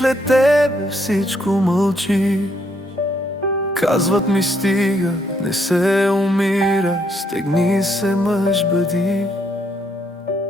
тебе всичко мълчи. Казват ми стига, не се умира, стегни се мъж бъди.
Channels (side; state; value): both; normal; correlation 0.73